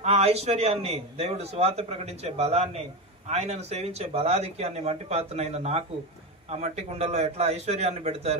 ఆ ఐశ్వర్యాన్ని, దేవుడు సువార్త ప్రకటించే బలాన్ని, ఆయనను సేవించే బలాధిక్యాన్ని మట్టి పాత్రనైన నాకు ఆ మట్టి కుండల్లో ఎట్లా ఐశ్వర్యాన్ని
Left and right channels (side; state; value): both; normal; correlation 0.18